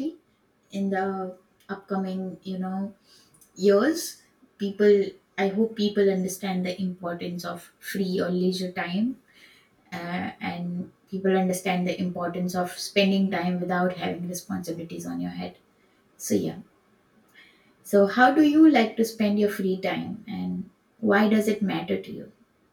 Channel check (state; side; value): identical; both; correlation 1.00